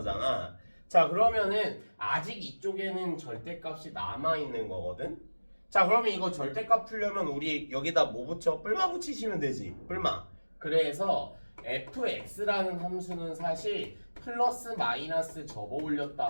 자, 그러면은 아직 이쪽에는 절대값이 남아있는 거거든. 자, 그러면 이거 절대값 풀려면 우리 여기다 뭐 붙여? 뿔마 붙이시면 되지. 뿔마. 그래서 fx라는 함수는 사실 플러스 마이너스 접어 올렸다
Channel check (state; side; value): inverted; both; correlation -1.00